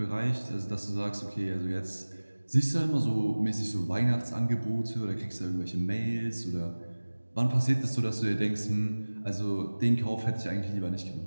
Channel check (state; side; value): inverted; both; correlation -1.00